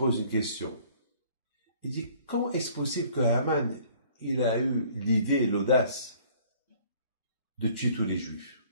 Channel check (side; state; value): both; inverted; correlation -0.56